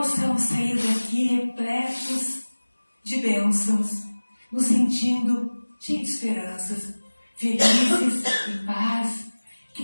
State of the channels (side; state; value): both; inverted; correlation -1.00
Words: sair daqui repletos de bênçãos, nos sentindo cheios de esperanças, felizes, em paz, que